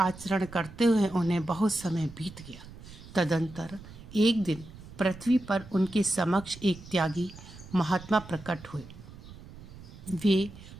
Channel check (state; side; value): noise; right; rumble, 17 dB below the sound